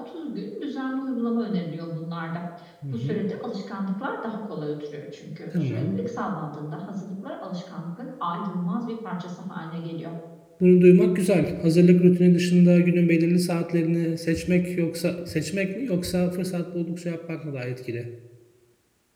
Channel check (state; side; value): identical; both; correlation 1.00